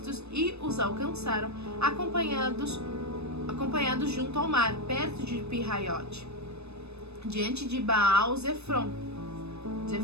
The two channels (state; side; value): late; left; 0.80 ms